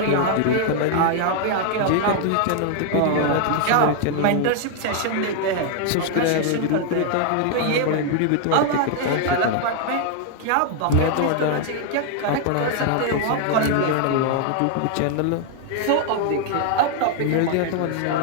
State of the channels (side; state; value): both; different; correlation 0.00